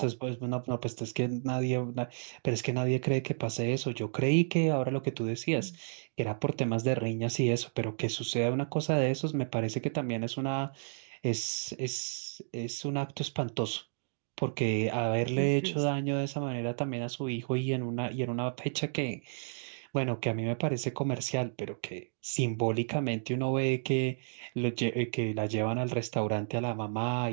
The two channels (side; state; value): left; silent; digital silence